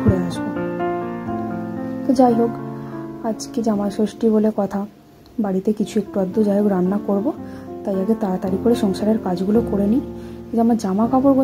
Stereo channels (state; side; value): identical; both; correlation 1.00